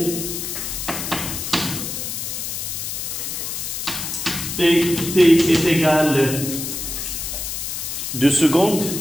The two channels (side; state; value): left; noise; hiss, 4 dB below the sound